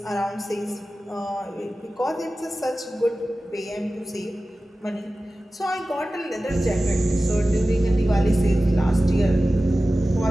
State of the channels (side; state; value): both; normal; correlation 0.95